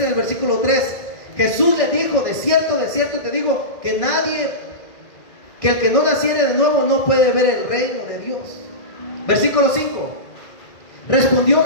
en el versículo 3. Jesús le dijo, de cierto te digo, que el que no naciere de nuevo no puede ver el reino de Dios. Versículo 5. Respondió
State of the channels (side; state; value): right; late; 1.6 ms